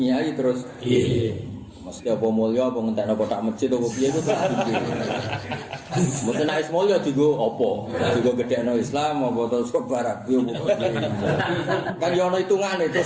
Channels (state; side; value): identical; both; correlation 1.00